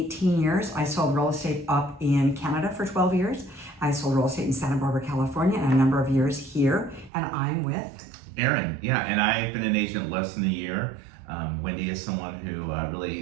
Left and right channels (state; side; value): drops out; left; at 7.1 s